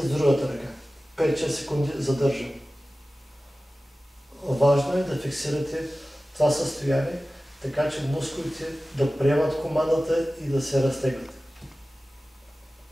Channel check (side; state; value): both; normal; correlation 0.96